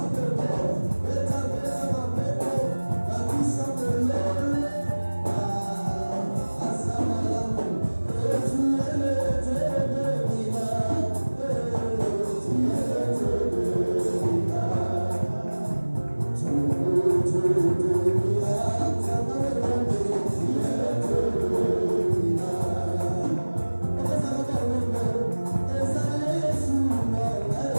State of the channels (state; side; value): inverted; both; correlation -1.00